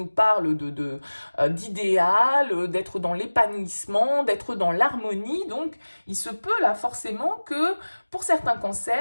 parle d'idéal, d'être dans l'épanouissement, d'être dans l'harmonie. Donc, il se peut là forcément que pour certains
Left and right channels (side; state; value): both; inverted; correlation -1.00